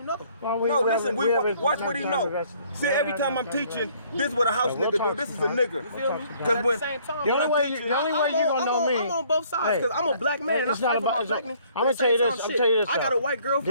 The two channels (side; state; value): both; inverted; correlation -0.60